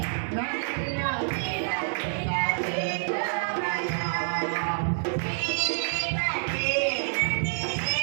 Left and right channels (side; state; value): left; silent; digital silence